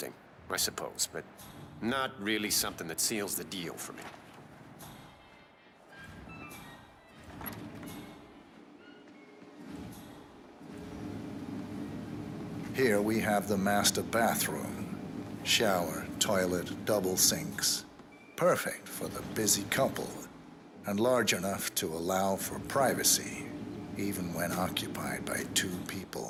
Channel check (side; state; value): both; identical; correlation 1.00